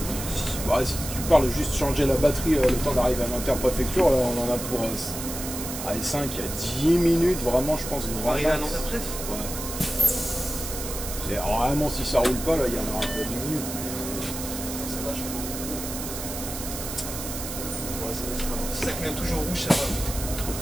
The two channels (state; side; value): noise; right; hiss, 7 dB below the sound